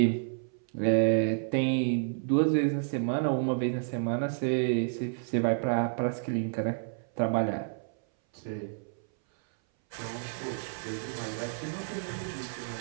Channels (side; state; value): left; silent; 58 dB below the other